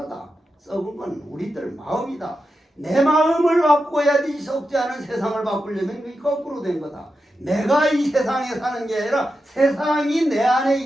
썩은 건 우리들 마음이다. 내 마음을 바꿔야지 썩지 않은 세상을 바꾸려면 그게 거꾸로 된 거다. 내가 이 세상에 사는 게 아니라 세상이 내 안에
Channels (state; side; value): normal; both; correlation 0.89